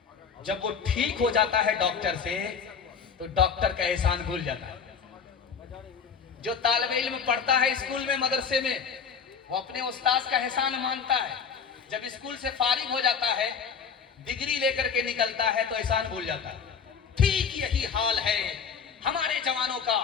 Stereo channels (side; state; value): right; quieter; 6.4 dB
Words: जब वो ठीक हो जाता है डॉक्टर से तो डॉक्टर का एहसान भूल जाता है। जो तालिबे इल्म पढ़ता है स्कूल में मदरसे में, वो अपने उस्ताद का एहसान मानता है, जब स्कूल से फारिग हो जाता है डिग्री लेकर के निकलता है तो एहसान भूल जाता है। ठीक यही हाल है हमारे जवानों का।